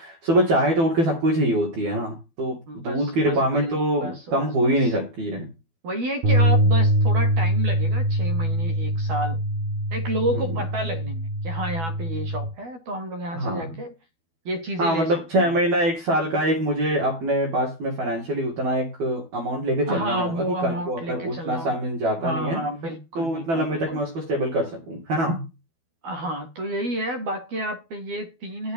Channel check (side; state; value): left; late; 12 ms